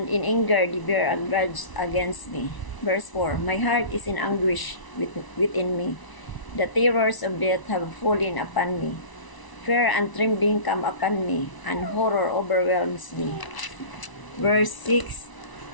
in anger they bear a grudge against me. Verse 4. My heart is in anguish within me. The terrors of death have fallen upon me. Fear and trembling come upon me, and horror overwhelms me. Verse 6.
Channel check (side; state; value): right; late; 1.0 ms